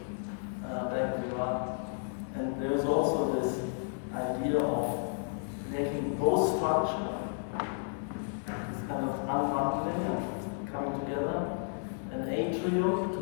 bank we run. And there is also this idea of making both structure, this kind of unbundling and coming together, an atrium to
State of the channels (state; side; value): silent; right; 56 dB below the other